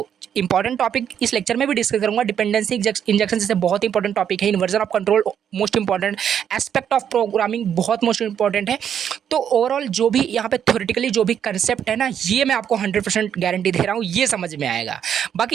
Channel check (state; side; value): quieter; left; 8.8 dB